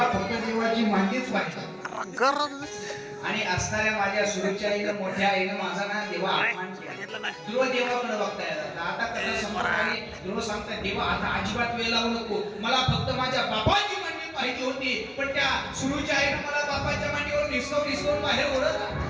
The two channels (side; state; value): both; identical; correlation 1.00